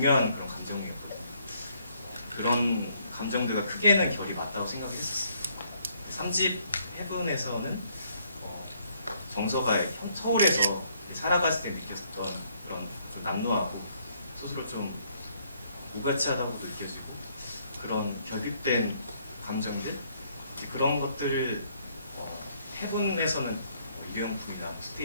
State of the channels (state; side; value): inverted; both; correlation -0.68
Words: 그런 감정이었거든요. 그런 감정들과 크게는 결이 맞다고 생각했었어요. 3집 헤븐에서는 정서가 서울에서 살아갔을 때 느꼈었던 그런 좀 남루하고 스스로 좀 무가치하다고도 느껴지고 그런 결핍된 감정들 그런 것들을 헤븐에서는 유형품이나